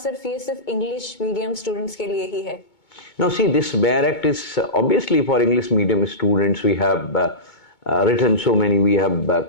इंग्लिश मीडियम स्टूडेंट्स के लिए ही है? Now see, this barrack is obviously for English medium students. We have written so many, we have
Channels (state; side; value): late; right; 2.2 ms